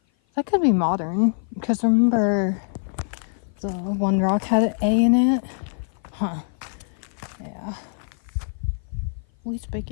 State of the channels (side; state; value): right; silent; 55 dB below the other